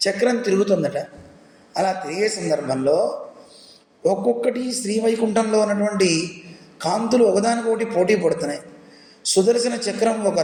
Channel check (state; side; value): identical; both; correlation 1.00